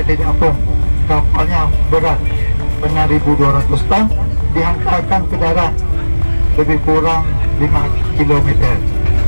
Apung. Kapalnya berat benar 1,200 ton, dihantarkan ke darat lebih kurang 5 km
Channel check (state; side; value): inverted; both; correlation -1.00